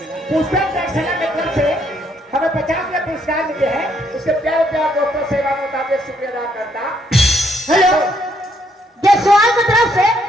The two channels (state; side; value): normal; both; correlation 0.71